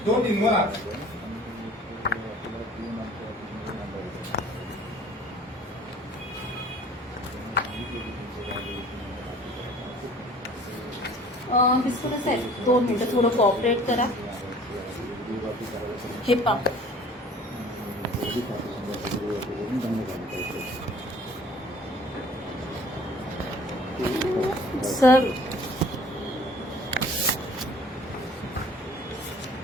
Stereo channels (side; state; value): both; normal; correlation 0.51